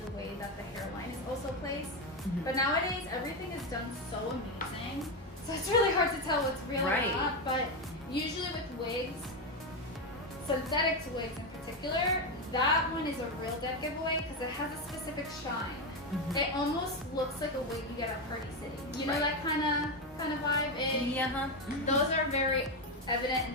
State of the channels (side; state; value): both; normal; correlation 0.10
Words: the way that the hairline is also placed. But nowadays everything is done so amazing, so it's really hard to tell what's real or not. But usually with wigs, synthetic wigs in particular, that one is a real dead giveaway because it has a specific shine. It almost looks like a wig you get at Party City. That kind of vibe. And those are very evident